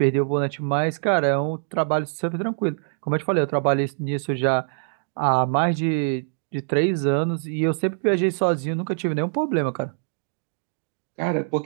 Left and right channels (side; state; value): left; silent; digital silence